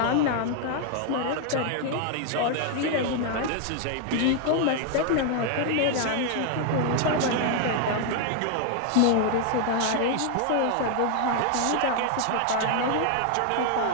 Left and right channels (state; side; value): different; both; correlation 0.00